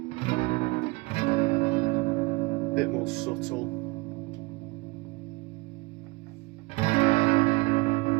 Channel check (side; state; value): left; quieter; 24.9 dB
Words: bit more subtle.